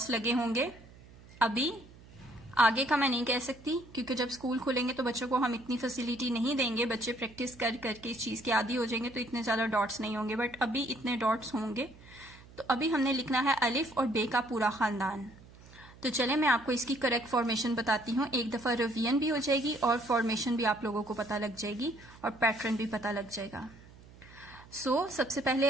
लगे होंगे। अभी आगे का मैं नहीं कह सकती, क्योंकि जब स्कूल खुलेंगे तो बच्चों को हम इतनी फैसिलिटी नहीं देंगे, बच्चे प्रैक्टिस कर करके इस चीज़ के आदी हो जाएंगे, तो इतने ज़्यादा डॉट्स नहीं होंगे, बट अभी इतने डॉट्स होंगे। तो अभी हमने लिखना है अलिफ और बे का पूरा ख़ानदान। तो चले मैं आपको इसकी करेक्ट फॉर्मेशन बताती हूँ। एक दफ़ा रिवीजन भी हो जाएगी और फॉर्मेशन भी आप लोगों को पता लग जाएगी और पैटर्न भी पता लग जाएगा। सबसे पहले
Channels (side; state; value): right; noise; hum, 22 dB below the sound